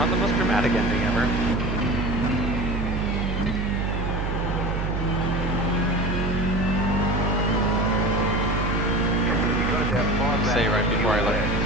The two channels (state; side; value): noise; right; hum, 1 dB below the sound